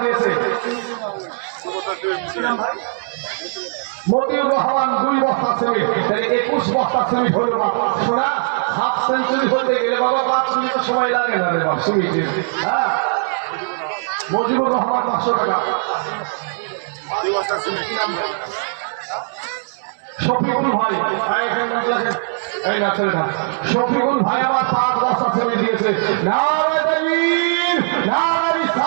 দিয়েছে। ভাই মতিউর রহমান 2 বস্তা সিমেন্ট। 21 বস্তা সিমেন্ট হলো না। শোনা হাফ সেঞ্চুরি হতে গেলে বাবা 5 মিনিট সময় লাগে না রে বাবা সিমেন্টে। হ্যাঁ মজিবুর রহমান 500 টাকা। 2 বস্তা সিমেন্ট। শফিকুল ভাই এই না ছেলেটা শফিকুল ভাই আমার 5 বস্তা সিমেন্ট দিয়েছে। নারে তাকবীর নারে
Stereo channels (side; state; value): left; silent; digital silence